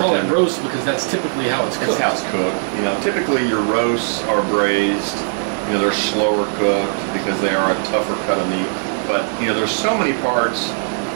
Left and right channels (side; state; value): left; silent; 67 dB below the other